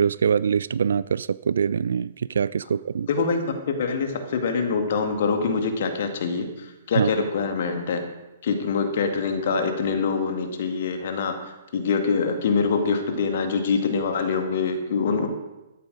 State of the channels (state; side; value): inverted; both; correlation -0.60